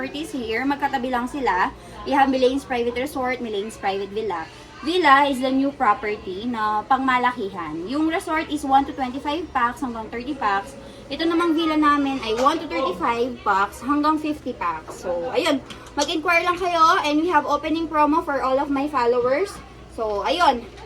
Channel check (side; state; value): both; identical; correlation 1.00